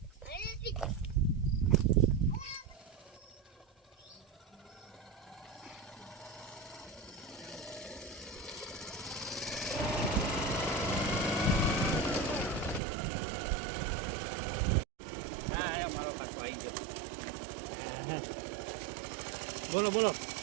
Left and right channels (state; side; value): drops out; left; at 12.8 s